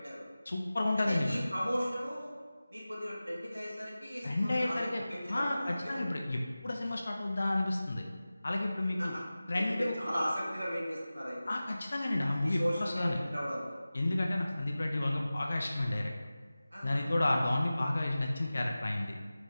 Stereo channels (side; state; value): both; inverted; correlation -0.97